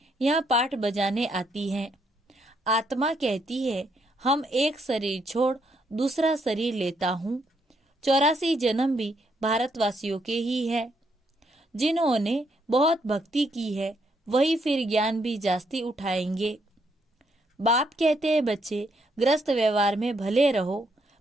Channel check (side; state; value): both; normal; correlation 0.74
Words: यहाँ पाठ बजाने आती हैं। आत्मा कहती है हम एक शरीर छोड़ दूसरा शरीर लेता हूँ। 84 जन्म भी भारतवासियों के ही है। जिन्होंने बहुत भक्ति की है वही फिर ज्ञान भी जास्ती उठाएंगे। बाप कहते हैं बच्चे ग्रस्त व्यवहार में भले रहो,